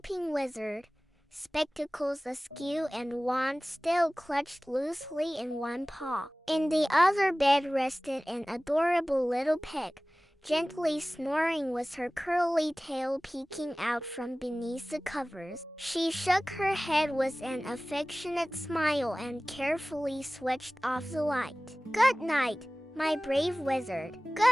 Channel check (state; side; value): normal; both; correlation 0.98